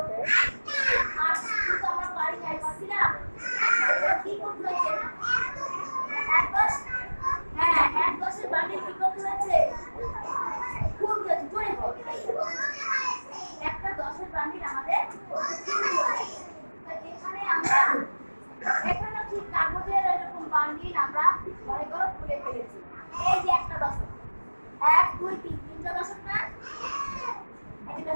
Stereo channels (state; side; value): inverted; both; correlation -1.00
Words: 8 কিন্তু আমরা পারি নাই, পারছিলাম? কি করতে হয়েছে? 1 10। হ্যাঁ, 1 10 এর বান্ডিল কি করতে হয়েছে? খুব জোরে বল। একটা 10 এর বান্ডিল আমাদের এখানে আমরা এখানে ঠিক কাগজের এরকম বান্ডিল আমরা ঘরে ঘরে খুলে ফেলেছি। এই যে একটা দশক, 1 2 3 তিনটা দশক না? এটা